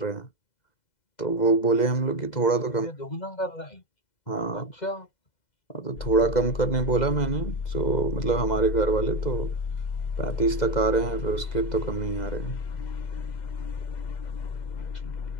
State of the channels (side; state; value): right; late; 2.0 ms